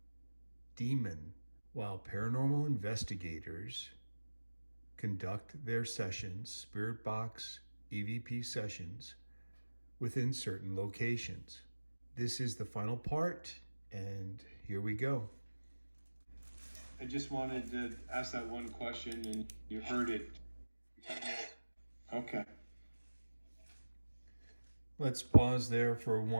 demon while paranormal investigators conduct their sessions, spirit box EVP sessions, within certain locations. This is the final part, and here we go. I just wanted to ask that one question, and you heard it. Okay. Let's pause there for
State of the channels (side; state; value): both; inverted; correlation -1.00